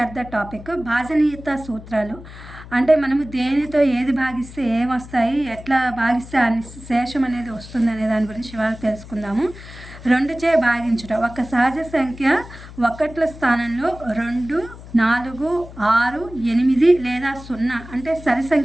the topic. భాజనీయత సూత్రాలు అంటే మనము దేనితో ఏది భాగిస్తే ఏమొస్తాయి, ఎట్లా భాగిస్తే ఆ శేషం అనేది వస్తుంది అనే దాని గురించి ఇవాళ తెలుసుకుందాము. 2చే భాగించుట. ఒక సహజ సంఖ్య ఒకట్ల స్థానంలో 2, 4, 6, 8 లేదా 0 అంటే సరి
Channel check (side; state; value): left; noise; hum, 16 dB below the sound